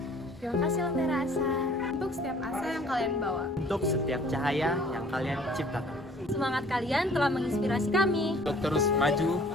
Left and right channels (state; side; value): normal; both; correlation 0.54